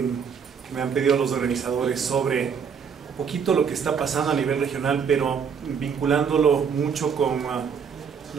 me han pedido los organizadores sobre un poquito lo que está pasando a nivel regional, pero vinculándolo mucho con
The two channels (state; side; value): quieter; left; 6.7 dB